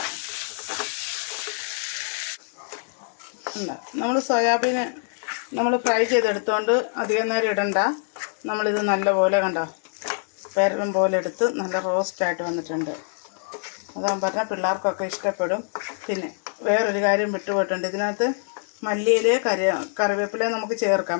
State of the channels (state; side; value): silent; right; digital silence